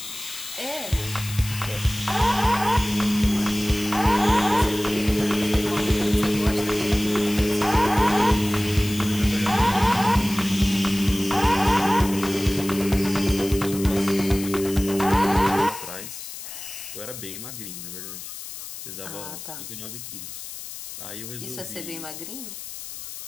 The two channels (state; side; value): noise; left; hiss, 11 dB below the sound